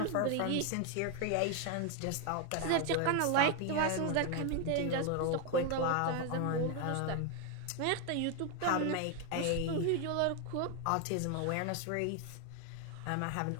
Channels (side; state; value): both; different; correlation 0.01